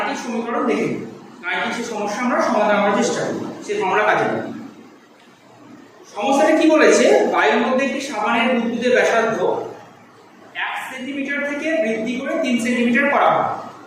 সমীকরণ দেখে নিই, গাণিতিক সেই সমস্যা আমরা সমাধান করার চেষ্টা করি, সেই ফর্মুলা কাজে লাগাই। সমস্যাটা কি বলেছে, বায়ুর মধ্যে একটি সাবানের বুদবুদের ব্যাসার্ধ 1 সেন্টিমিটার থেকে বৃদ্ধি করে 3 সেন্টিমিটার করা হয়।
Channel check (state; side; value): identical; both; correlation 1.00